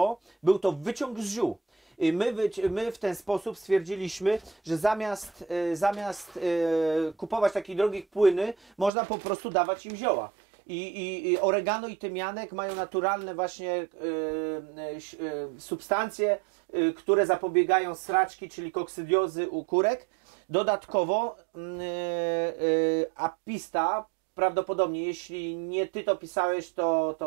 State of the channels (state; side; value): drops out; left; at 8.9 s